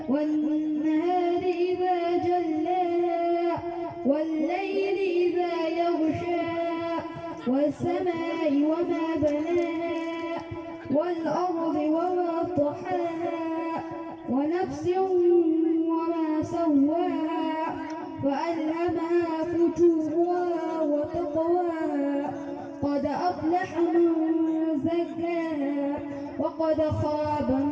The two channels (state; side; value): identical; both; correlation 1.00